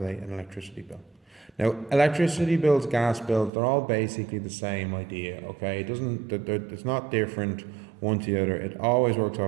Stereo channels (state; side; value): drops out; left; at 3.5 s